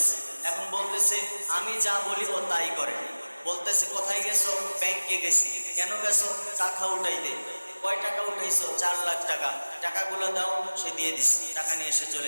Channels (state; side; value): inverted; both; correlation -1.00